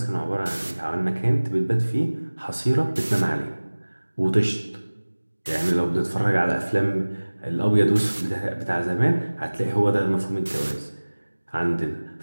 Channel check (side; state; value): both; inverted; correlation -1.00